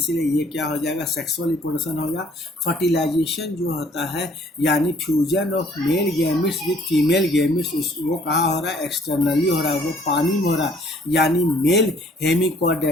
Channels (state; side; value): normal; both; correlation 0.59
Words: ये क्या हो जाएगा? सेक्सुअल रिप्रोडक्शन होगा। फर्टिलाइजेशन जो होता है यानी fusion of male gametes with female gametes, वो कहाँ हो रहा है? एक्सटर्नली हो रहा है, वो पानी में हो रहा है। यानी मेल